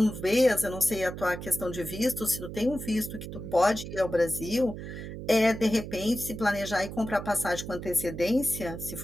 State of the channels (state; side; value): noise; right; hum, 9 dB below the sound